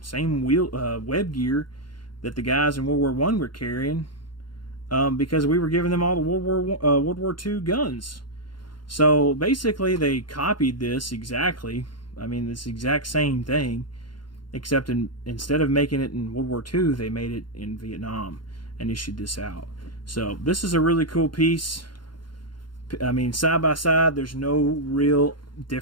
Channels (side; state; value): right; late; 0.72 ms